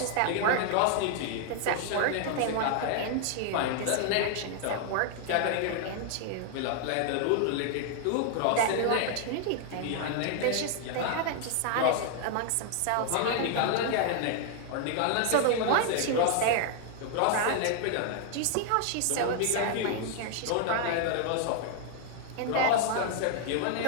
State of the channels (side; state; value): both; different; correlation 0.00